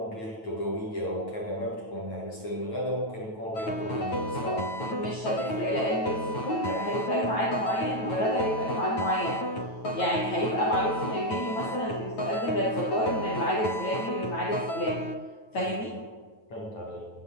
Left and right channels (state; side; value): late; right; 9.2 ms